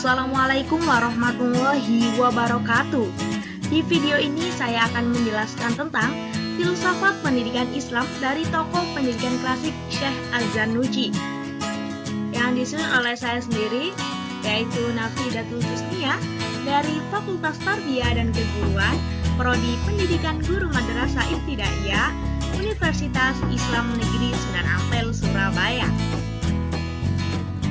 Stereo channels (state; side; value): identical; both; correlation 1.00